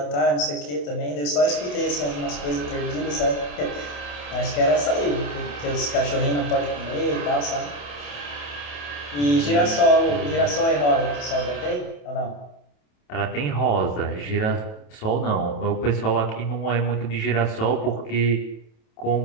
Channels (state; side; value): late; right; 28 ms